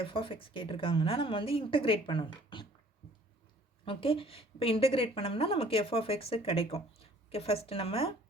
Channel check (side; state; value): both; normal; correlation 0.55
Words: f of x கேட்டிருக்காங்கன்னா நம்ம வந்து integrate பண்ணணும். Okay, இப்போ integrate பண்ணோம்னா நமக்கு f of x கிடைக்கும். ஓகே, ஃபர்ஸ்ட் நம்ம